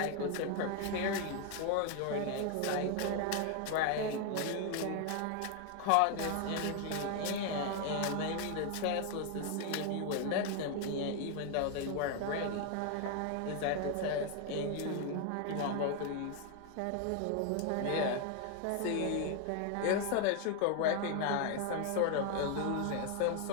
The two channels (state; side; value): different; both; correlation 0.01